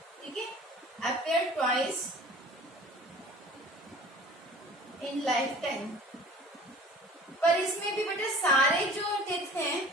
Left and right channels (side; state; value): both; normal; correlation 0.45